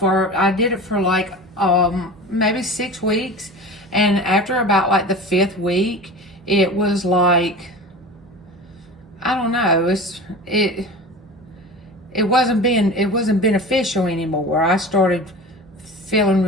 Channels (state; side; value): normal; both; correlation 0.34